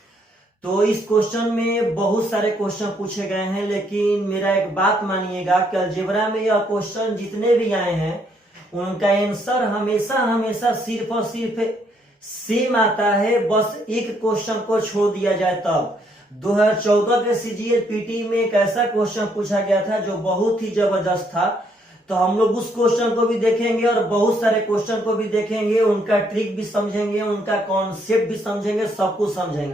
तो इस क्वेश्चन में बहुत सारे क्वेश्चन पूछे गए हैं, लेकिन मेरा एक बात मानिएगा कि अलजेब्रा में यह क्वेश्चन जितने भी आए हैं उनका आंसर हमेशा हमेशा सिर्फ और सिर्फ सेम आता है। बस एक क्वेश्चन को छोड़ दिया जाए तब 2014 के सीजीएल पीटी में एक ऐसा क्वेश्चन पूछा गया था जो बहुत ही जबरदस्त था। तो हम लोग उस क्वेश्चन को भी देखेंगे और बहुत सारे क्वेश्चन को भी देखेंगे, उनका ट्रिक भी समझेंगे, उनका कॉन्सेप्ट भी समझेंगे, सब कुछ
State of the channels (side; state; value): both; normal; correlation 0.71